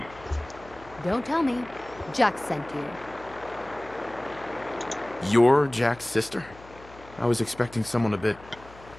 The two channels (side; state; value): left; noise; hum, 21 dB below the sound